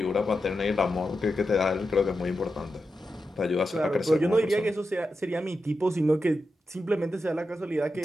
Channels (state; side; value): normal; both; correlation 0.89